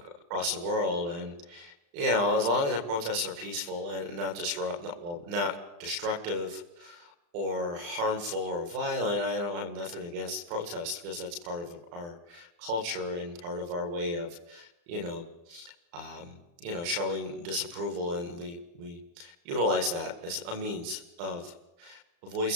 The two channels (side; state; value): left; late; 35 ms